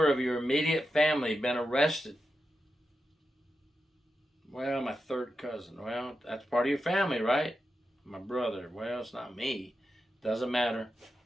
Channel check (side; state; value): both; normal; correlation 0.89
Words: of your immediate family been arrested? Well, my third cousin. Well, that's part of your family, right? My brother. Well, it's not me. Doesn't matter.